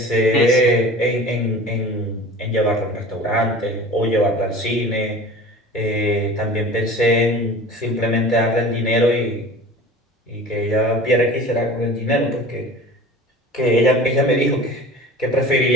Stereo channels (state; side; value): normal; both; correlation 0.40